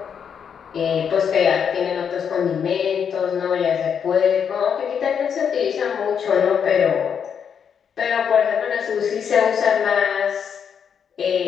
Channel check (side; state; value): right; quieter; 7.4 dB